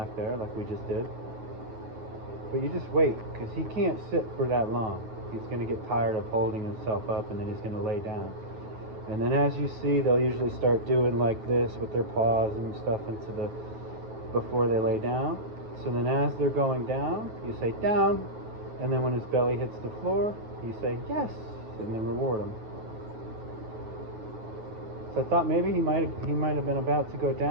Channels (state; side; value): late; left; 9.4 ms